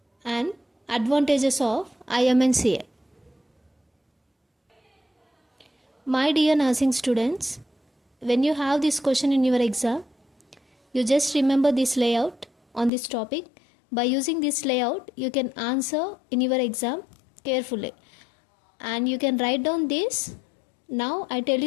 and advantages of IMNCI. My dear nursing students, when you have this question in your exam, you just remember this layout on this topic. By using this layout, you can answer in your exam carefully. And you can write down this. Now I tell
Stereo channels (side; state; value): right; drops out; at 12.9 s